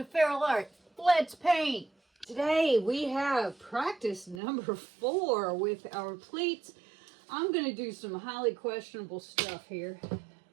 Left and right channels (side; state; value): left; drops out; at 4.4 s